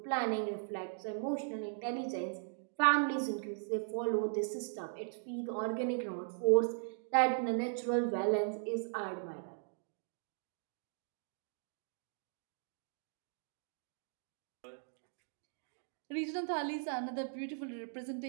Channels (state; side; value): silent; left; digital silence